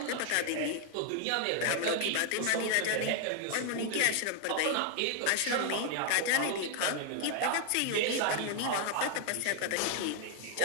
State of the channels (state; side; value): different; both; correlation 0.00